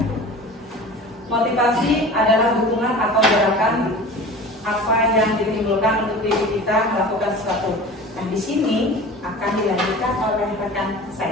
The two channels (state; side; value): normal; both; correlation 0.38